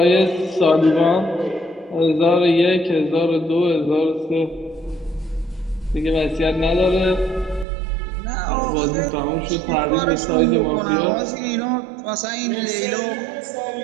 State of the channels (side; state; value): left; drops out; at 7.7 s